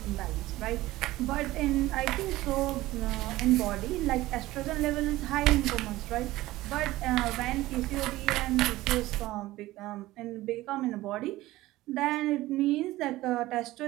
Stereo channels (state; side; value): quieter; left; 17.3 dB